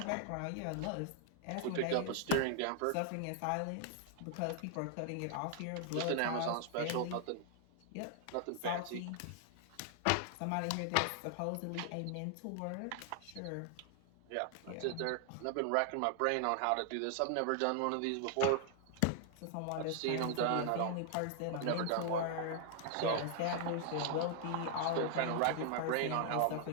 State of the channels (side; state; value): both; different; correlation 0.00